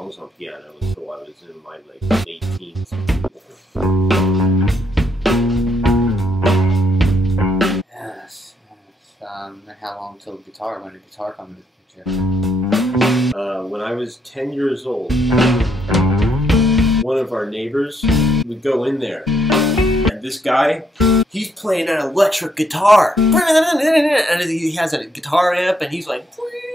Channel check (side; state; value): both; normal; correlation 0.73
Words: on piano until I was in my like late teens. Yes. And how long until guitar? When did guitar come into the picture? When I was 10 years old, one of our neighbors would go in there, and this guy, he's playing an electric guitar, and he has a guitar amp, and he's like,